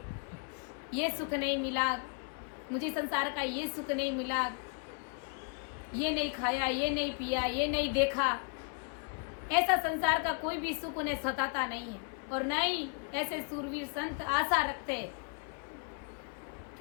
ये सुख नहीं मिला, मुझे संसार का ये सुख नहीं मिला, ये नहीं खाया, ये नहीं पिया, ये नहीं देखा, ऐसा संसार का कोई भी सुख उन्हें सताता नहीं है। और न ही ऐसे सूरवीर संत आशा रखते,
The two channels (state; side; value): quieter; right; 38.6 dB